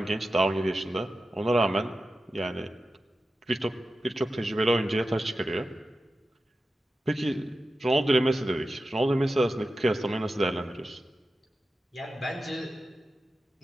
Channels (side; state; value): both; normal; correlation 0.93